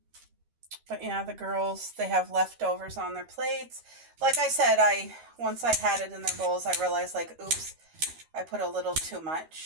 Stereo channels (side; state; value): left; late; 13 ms